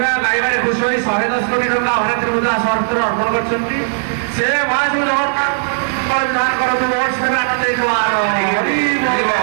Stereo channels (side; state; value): left; silent; 67 dB below the other